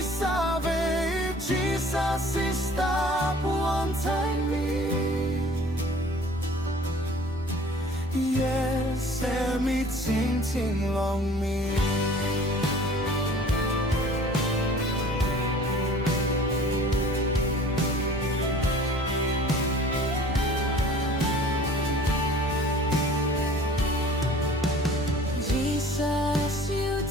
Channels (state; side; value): normal; both; correlation 0.48